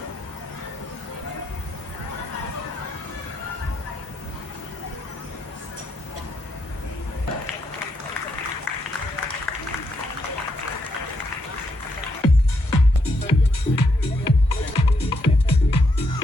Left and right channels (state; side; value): late; right; 1.5 ms